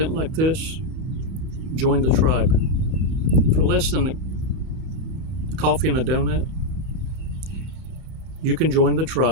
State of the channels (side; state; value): left; late; 30 ms